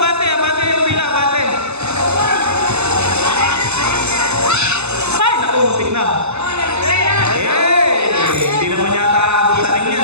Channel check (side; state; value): left; late; 0.81 ms